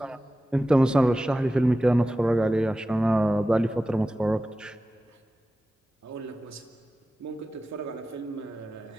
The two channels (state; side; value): normal; both; correlation 0.95